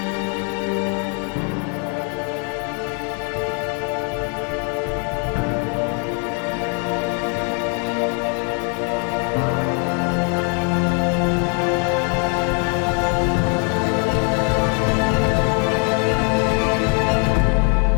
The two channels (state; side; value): quieter; right; 37.3 dB